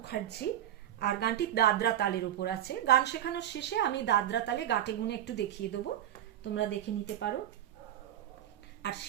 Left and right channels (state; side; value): quieter; left; 11.5 dB